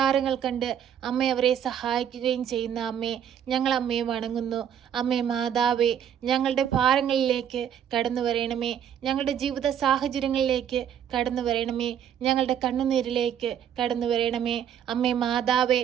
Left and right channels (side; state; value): left; quieter; 9.2 dB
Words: കണ്ട് അമ്മ അവരെ സഹായിക്കുകയും ചെയ്യുന്ന അമ്മേ, ഞങ്ങൾ അമ്മയെ വണങ്ങുന്നു. അമ്മേ മാതാവേ, ഞങ്ങളുടെ ഭാരങ്ങളിലേക്ക് കടന്നു വരണമേ, ഞങ്ങളുടെ ജീവിത സാഹചര്യങ്ങളിലേക്ക് കടന്നു വരണമേ, ഞങ്ങളുടെ കണ്ണുനീരിലേക്ക് കടന്നു വരണമേ. അമ്മേ